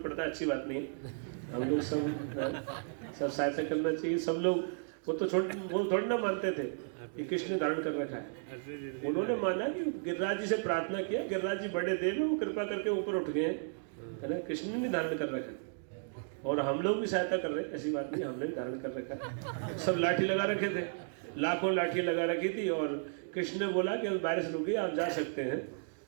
पड़ता है, अच्छी बात नहीं है। हम लोग सब सहायता करना चाहिए, सब लोग। वो तो वो थोड़ी ना मानते थे कि कृष्ण ने धारण कर रखा है, उन्होंने माना कि गिरिराज जी से प्रार्थना किया, गिरिराज जी बड़े देव है, वो कृपा करके ऊपर उठ गए, है ना। कृष्ण ने धारण कर रखा है और हम लोग भी सहायता कर रहे हैं, ऐसी बात नहीं, हमने भी धारण कर रखा है। सब लाठी लगा रखे थे, लाखों लाठियां लगा रखी थी। और कृष्ण ने बोला कि बारिश रुक गई, आप जा सकते हैं।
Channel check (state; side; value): silent; left; digital silence